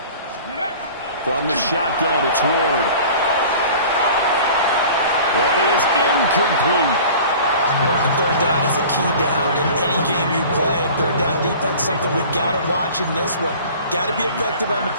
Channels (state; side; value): inverted; both; correlation -0.43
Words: From the shotgun, it's Ward. That is incomplete. And third down is a key down in any game you play. And third down defense, something we've got to watch in this one. Got to be effective on the